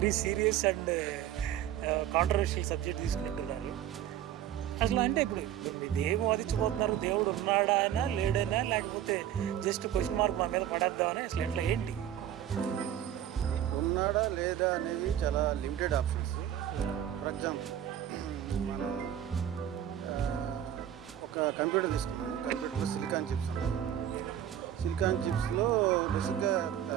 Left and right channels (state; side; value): quieter; left; 10.9 dB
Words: serious and controversial subject తీసుకుంటున్నారు. అసలు అంటే ఇప్పుడు మీరు ఏం వాదించబోతున్నారు? దేవుడు ఉన్నాడానా లేడైనా, లేకపోతే జస్ట్ క్వశ్చన్ మార్క్ మా మీద పడేద్దామని, అసలు ఎట్లా ఏంటి? ఉన్నాడా లేదా అనేవి చాలా లిమిటెడ్ ఆప్షన్స్. ఫర్ ఎగ్జాంపుల్, మనం ఒక కంప్యూటర్ తీసుకున్నాం. కంప్యూటర్లో సిలికాన్ చిప్స్ ఉంటాయి. సిలికాన్ చిప్స్లో బేసిక్గా